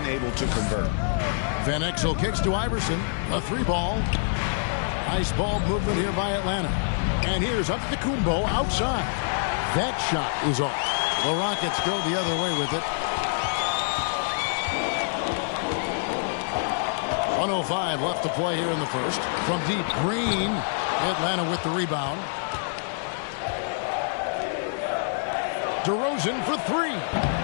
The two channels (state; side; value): silent; right; digital silence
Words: to convert. Van Exel kicks to Iverson. A 3-ball. Nice ball movement here by Atlanta. And here's Antetokounmpo outside. That shot is off. The Rockets go the other way with it. 1:05 left to play here in the first. From deep, Green. Atlanta with the rebound. DeRozan for 3.